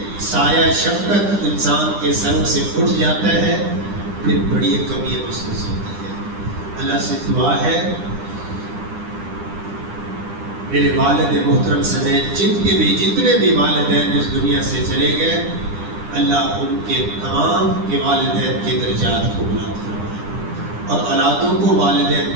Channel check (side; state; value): left; late; 9.9 ms